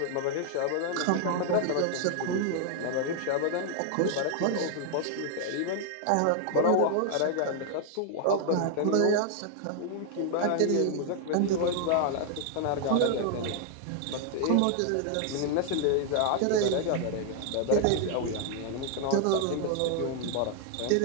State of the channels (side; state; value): both; different; correlation 0.00